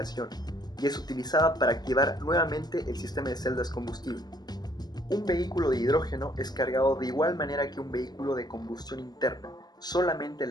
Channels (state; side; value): late; right; 0.19 ms